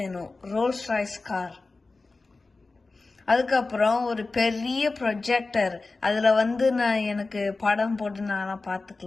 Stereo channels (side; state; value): right; quieter; 3.6 dB